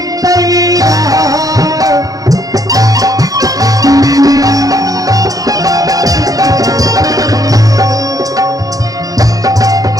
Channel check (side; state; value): left; late; 0.17 ms